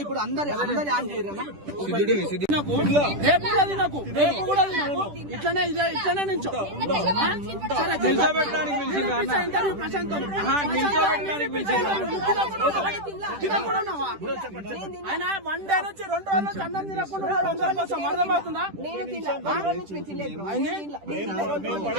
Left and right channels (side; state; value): left; late; 10 ms